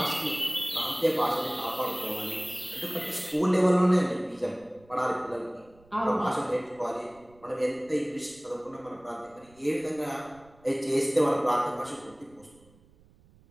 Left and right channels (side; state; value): right; noise; rumble, 28 dB below the sound